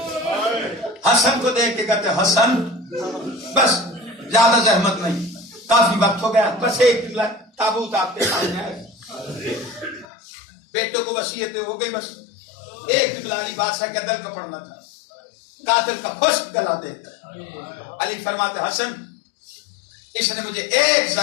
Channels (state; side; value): drops out; right; at 10.1 s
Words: حسن کو دیکھ کے کہتے حسن بس زیادہ زحمت نہیں، کافی وقت ہو گیا، بس ایک تابوت آپ کے سامنے ہے، بیٹوں کو وصیت ہو گئی، بس ایک جملہ علی بادشاہ کے دل کا پڑھنا تھا، قاتل کا خشک گلا دیکھ کر علی فرماتے حسن اس نے مجھے ایک